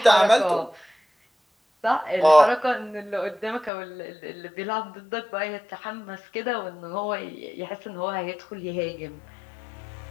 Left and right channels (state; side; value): drops out; right; at 3.7 s